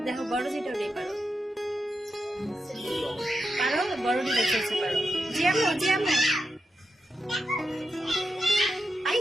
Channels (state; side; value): normal; both; correlation 0.87